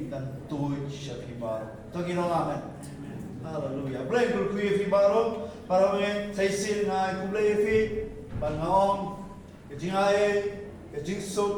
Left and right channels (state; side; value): identical; both; correlation 1.00